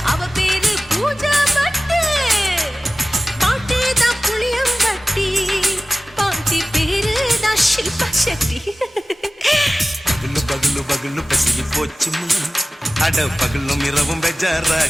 அவ பேரு பூஜா பட்டு. பாட்டி தான் புளியம்பட்டி, பாட்டி பேரு தான் ஷில்பா செட்டி. பகலு பகலு பகலு பசிக்கு போச்சுமா, அட பகலும் இரவும்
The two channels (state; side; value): normal; both; correlation 0.96